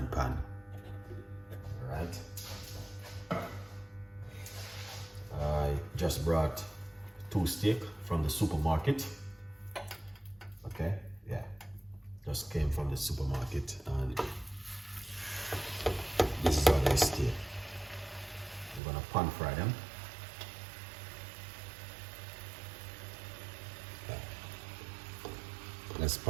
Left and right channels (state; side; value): drops out; left; at 18.8 s